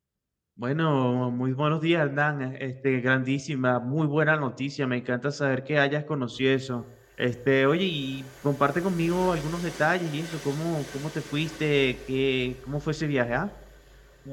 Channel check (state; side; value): identical; both; correlation 1.00